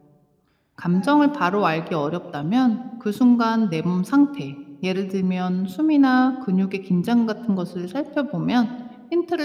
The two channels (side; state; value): both; identical; correlation 1.00